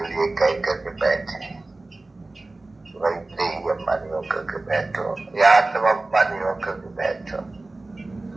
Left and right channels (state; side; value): quieter; left; 3.1 dB